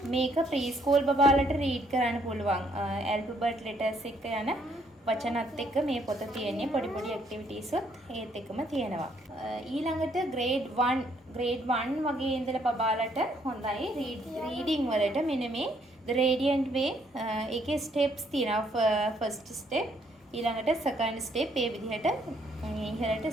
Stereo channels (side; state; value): both; normal; correlation 0.69